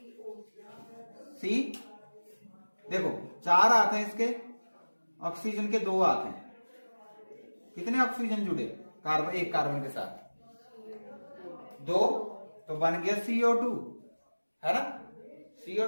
सी। देखो 4 हाथ हैं इसके, ऑक्सीजन के 2 हाथ हैं, कितने ऑक्सीजन जुड़े कार्बन, एक कार्बन के साथ 2, तो बन गया CO2, है ना?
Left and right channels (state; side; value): inverted; both; correlation -1.00